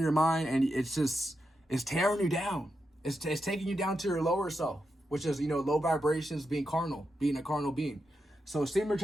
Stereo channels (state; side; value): normal; both; correlation 0.86